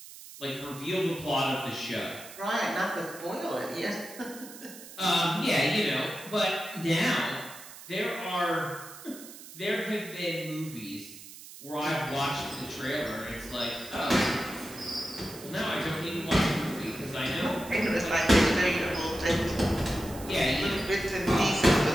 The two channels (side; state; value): right; noise; hiss, 16 dB below the sound